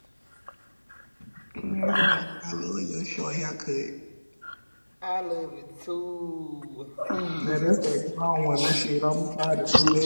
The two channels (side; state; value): both; inverted; correlation -1.00